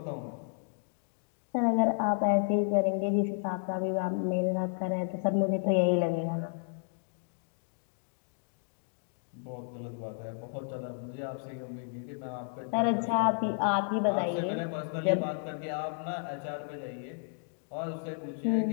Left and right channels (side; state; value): right; silent; digital silence